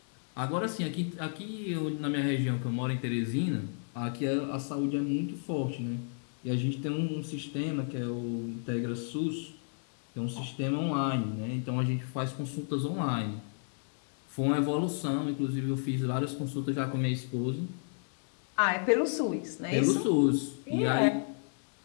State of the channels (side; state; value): right; silent; digital silence